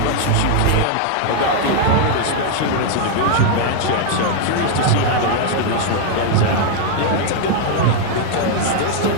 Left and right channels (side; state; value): both; different; correlation 0.00